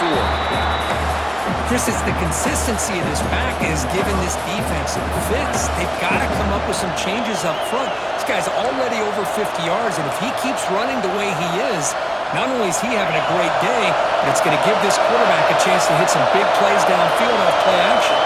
Chris, it's the consistency of this back is giving this defense some fits. They've got to come up with some changes up front. This guy's already over 50 yards, and if he keeps running the way he is, not only is he having a great day, but it's going to give this quarterback a chance to hit some big plays downfield off play action.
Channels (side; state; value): both; identical; correlation 1.00